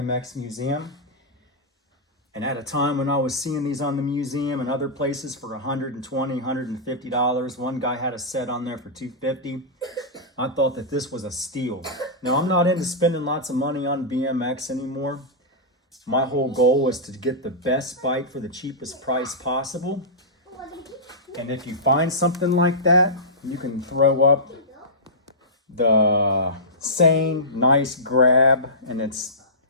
Museum. And at a time when I was seeing these on the museum and other places for $120, $150, one guy had a set on there for $250. I thought that this was a steal. Now, I'm not into spending lots of money on BMX anymore. My whole goal was to get the best bike for the cheapest price possible. And if you find something like that, you can throw up the same nice grab, and it's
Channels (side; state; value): both; normal; correlation -0.16